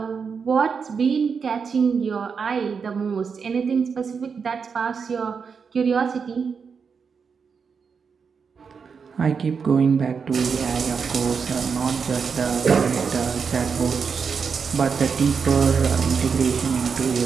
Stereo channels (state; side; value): quieter; left; 5.9 dB